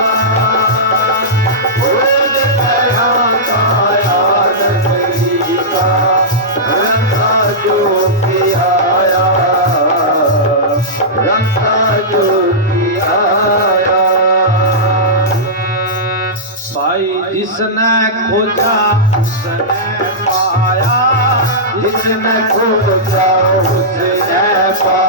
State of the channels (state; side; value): normal; both; correlation -0.13